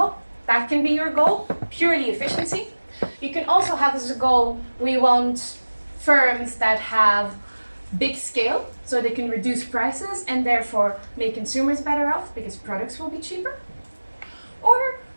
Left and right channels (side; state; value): both; inverted; correlation -1.00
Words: That can be your goal, purely efficiency. You can also have as a goal, we want firms that have big scale, so they can reduce prices and therefore make consumers better off because products will be cheaper. Or